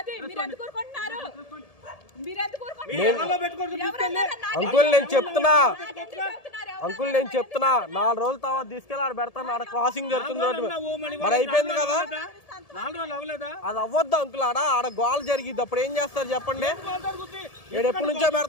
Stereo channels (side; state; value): right; late; 1.7 ms